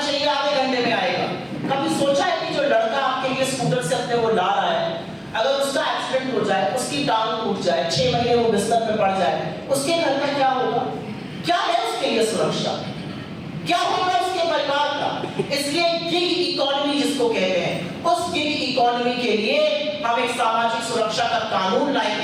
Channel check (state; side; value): identical; both; correlation 1.00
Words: आधे घंटे में आएगा। कभी सोचा है कि जो लड़का आपके लिए स्कूटर से अपने वो ला रहा है, अगर उसका एक्सीडेंट हो जाए, उसकी टांग टूट जाए, 6 महीने वो बिस्तर पे पड़ जाए, उसके घर में क्या होगा? क्या है उसके लिए सुरक्षा? क्या होगा उसके परिवार का? इसलिए गिग इकोनॉमी जिसको कहते हैं, उस गिग इकोनॉमी के लिए हम एक सामाजिक सुरक्षा का कानून